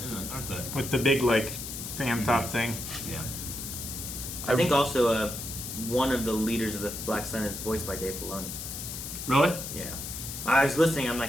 aren't they? With the big, fan top thing. Yeah. I think also one of the leaders of the Black Sun is voiced by Dave Filoni. Really? Yeah. I was listening. I'm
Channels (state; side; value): noise; left; hiss, 7 dB below the sound